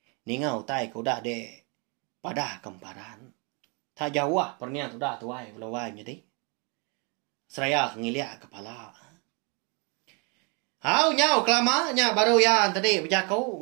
Ningau tai ku dah de padah kemparan. Tak jauh pernian tu dah tuai belawai jadi. Seraya ngiliak kepala. Hau nyau kelama nya baru ya tadi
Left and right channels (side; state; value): left; quieter; 33.6 dB